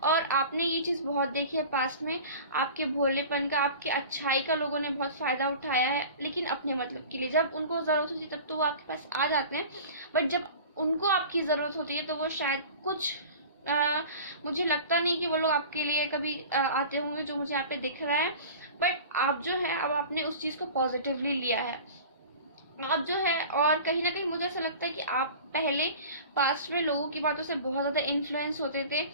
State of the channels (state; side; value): inverted; both; correlation -0.39